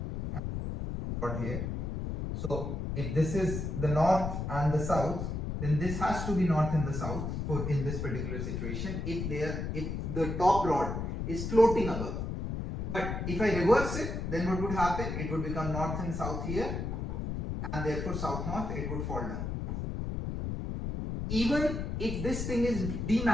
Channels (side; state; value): left; noise; rumble, 3 dB below the sound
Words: and rod here. So if this is the north and the south, then this has to be north and the south for in this particular situation. If the top rod is floating above, But if I reverse it, then what would happen? It would become north and south here, and therefore south-north, it would fall down. Even if this thing is